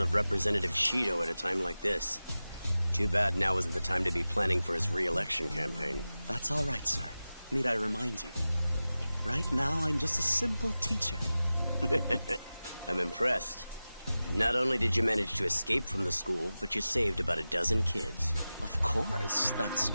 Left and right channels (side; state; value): both; inverted; correlation -0.95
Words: Representative Shido at a time like this. Too bad now isn't the time to be planning for his re-election campaign. That's all right, sir. Need I remind you? Right now, I'm just a simple teacher. I'm impressed. Not only did you manage to escape from the school, but you saved about a dozen kids. Of course, that's